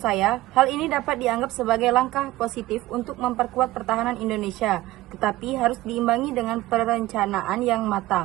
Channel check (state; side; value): quieter; left; 17.4 dB